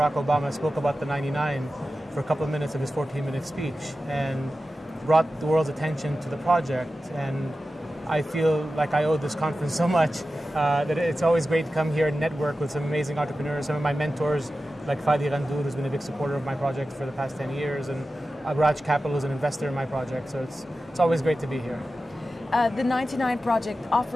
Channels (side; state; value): both; normal; correlation 0.94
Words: Obama spoke about the 99 for a couple of minutes of his 14-minute speech and brought the world's attention to the project. And I feel like I owe this conference so much that it's always great to come here and network with some amazing entrepreneurs. Some of my mentors, like Fadi Ghandour, who's been a big supporter of my project for the past 10 years, and Agraj Capital is an investor in my project. So it's always great to be here. The 99 project